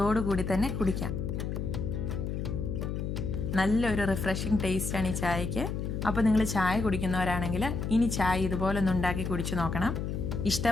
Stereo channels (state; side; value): noise; left; hum, 3 dB below the sound